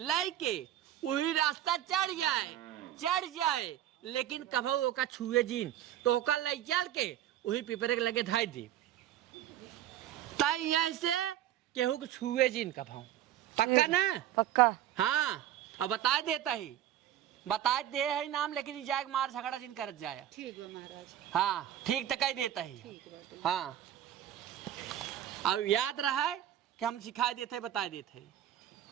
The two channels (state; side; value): quieter; left; 11.8 dB